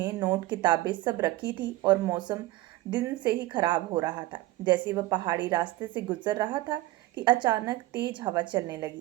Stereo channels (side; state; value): left; quieter; 17.8 dB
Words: नोट, किताबें सब रखी थी और मौसम दिन से ही खराब हो रहा था। जैसे वह पहाड़ी रास्ते से गुजर रहा था कि अचानक तेज हवा चलने